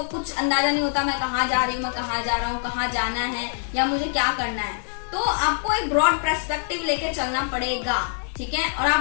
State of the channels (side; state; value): right; silent; digital silence